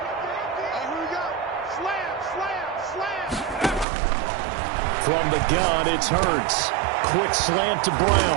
And here we go. Slam. From the gun, it's Hurts. Quick slant to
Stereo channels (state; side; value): drops out; left; at 3.9 s